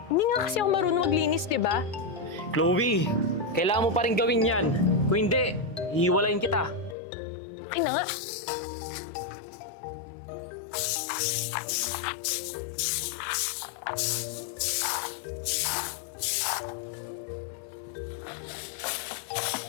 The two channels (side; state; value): right; drops out; at 7.0 s